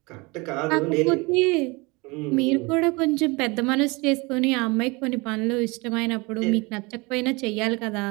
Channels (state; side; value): quieter; left; 26.1 dB